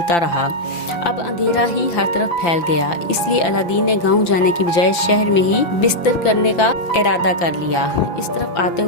रहा। अब अंधेरा ही हर तरफ फैल गया, इसलिए अलादीन ने गांव जाने की बजाय शहर में ही बिस्तर करने का इरादा कर लिया। इस तरफ आते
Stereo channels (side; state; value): right; late; 5.9 ms